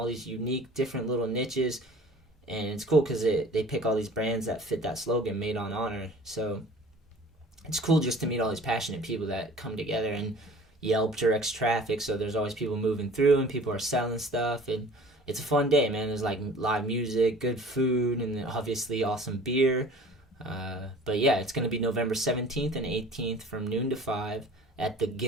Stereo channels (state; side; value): normal; both; correlation 0.47